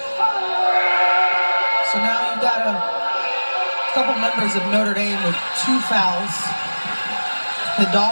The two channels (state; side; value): inverted; both; correlation -1.00